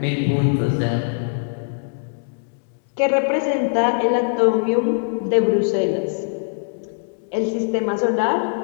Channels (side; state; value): right; silent; digital silence